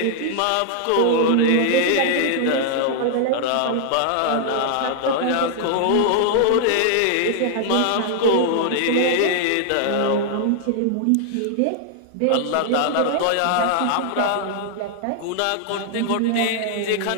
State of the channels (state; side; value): different; both; correlation 0.00